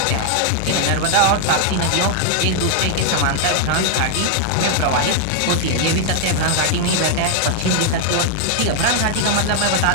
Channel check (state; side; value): different; both; correlation 0.00